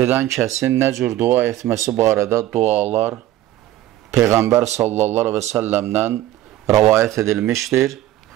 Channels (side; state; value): left; quieter; 14.2 dB